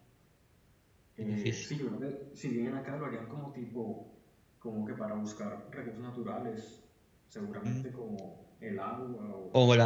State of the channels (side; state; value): both; identical; correlation 1.00